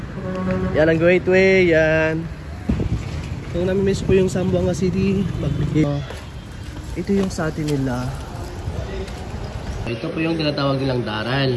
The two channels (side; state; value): both; identical; correlation 1.00